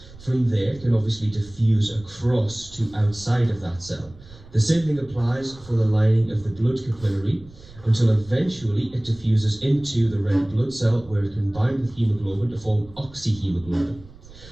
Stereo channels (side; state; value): right; noise; rumble, 21 dB below the sound